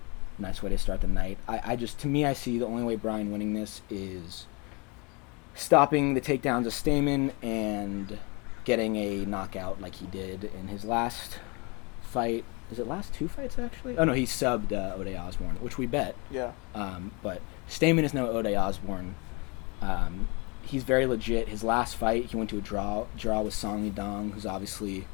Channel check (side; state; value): right; quieter; 29.7 dB